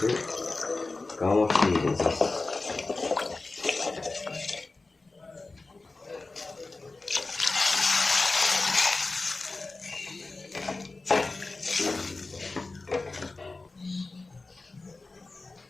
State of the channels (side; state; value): right; quieter; 3.5 dB